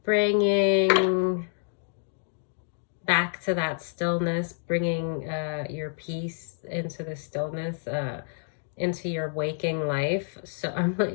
Bringing back to that stillness, bringing your peace into the stillness, into your waking life. So I'm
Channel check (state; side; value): silent; right; digital silence